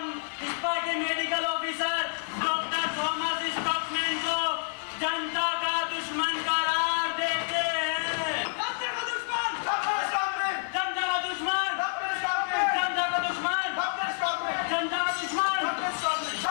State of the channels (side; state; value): right; silent; 59 dB below the other